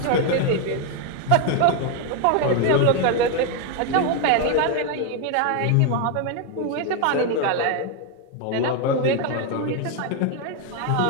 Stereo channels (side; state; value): both; different; correlation 0.01